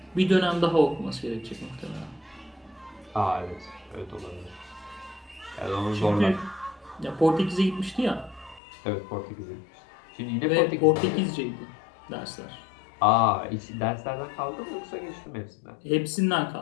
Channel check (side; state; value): right; drops out; at 8.6 s